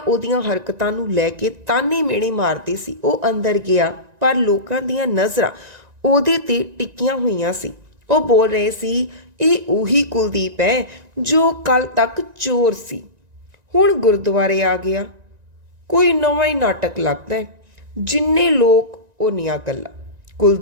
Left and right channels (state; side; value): late; left; 1.9 ms